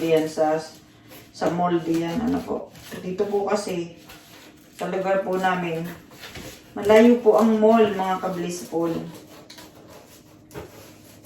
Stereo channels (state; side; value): identical; both; correlation 1.00